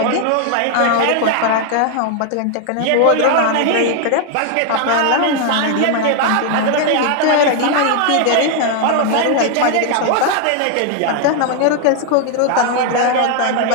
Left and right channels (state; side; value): different; both; correlation 0.00